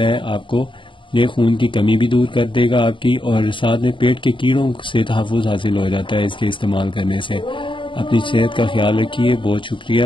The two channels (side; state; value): right; late; 0.24 ms